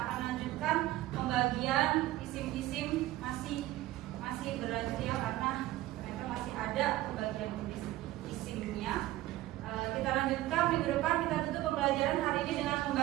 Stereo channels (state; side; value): quieter; left; 16.0 dB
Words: akan lanjutkan pembagian isim-isim, masih berlanjut ya, karena ternyata masih ada pembagian isimnya. Kita lanjutkan minggu depan. Kita tutup pembelajaran hari ini dengan